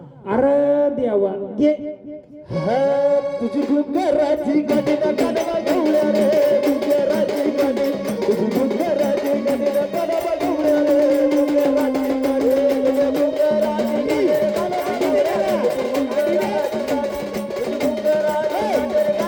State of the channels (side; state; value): both; identical; correlation 1.00